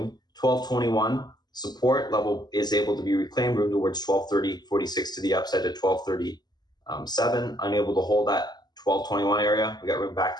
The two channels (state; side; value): late; right; 0.20 ms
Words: 1221 support level is able to be reclaimed. Room towards 1230.46 to the upside to 1230.7. Unable to hold that 1221 area. We got room